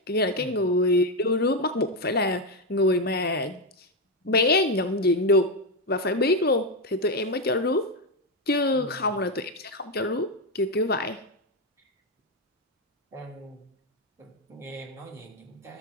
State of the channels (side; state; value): both; normal; correlation 0.07